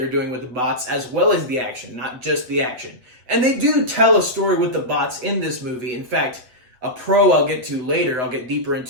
doing with the bots as well as the action, not just the action. And they do tell a story with the bots in this movie. In fact, a pro I'll get deeper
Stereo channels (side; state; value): left; late; 8.0 ms